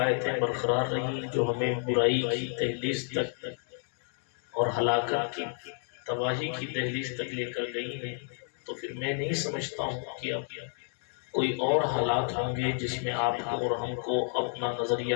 برقرار رہی جو ہمیں برائی کی دہلیز تک اور ہلاکت کی تباہی کی دہلیز تک لے کر گئی ہیں، تو پھر میں نہیں سمجھتا ہوں کہ اب کوئی اور حالات ہوں گے جس میں آپ کو اور ہم کو اپنا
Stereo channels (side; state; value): right; silent; 57 dB below the other